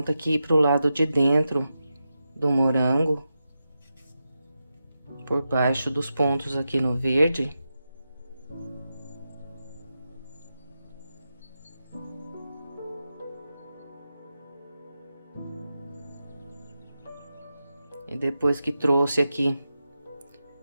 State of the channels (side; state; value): both; inverted; correlation -0.90